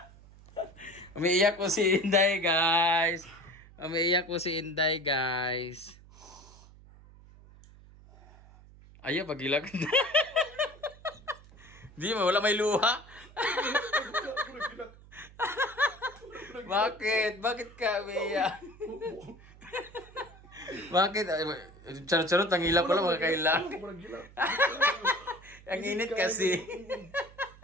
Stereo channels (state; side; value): noise; right; hum, 22 dB below the sound